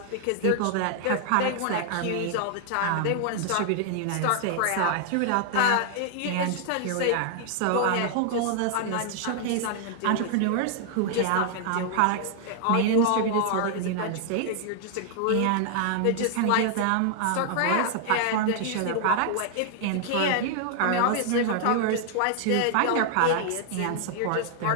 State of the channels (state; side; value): different; both; correlation 0.00